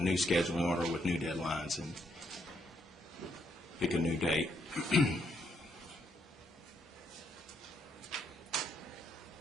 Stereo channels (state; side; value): normal; both; correlation 0.75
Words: new scheduling order with new deadlines and pick a new date.